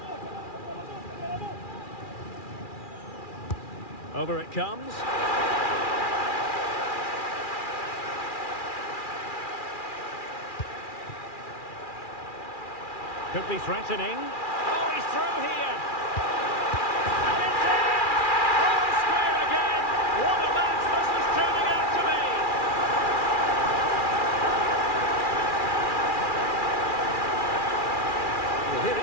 Over it comes. Could be threatening. Oh, he's through here. And it's in! All square again. What a match this is turning out to be. Well, here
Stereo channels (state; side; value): late; right; 2.4 ms